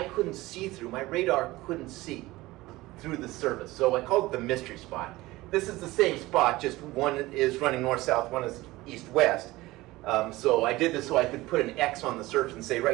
couldn't see through. My radar couldn't see through the surface. So I called it the mystery spot. This is the same spot, just one is running north-south, one is east-west. So I did this so I could put an X on the surface and say,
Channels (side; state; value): left; quieter; 19.1 dB